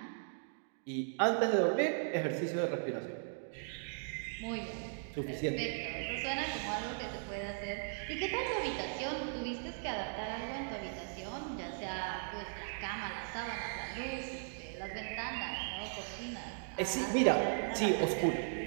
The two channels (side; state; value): left; silent; digital silence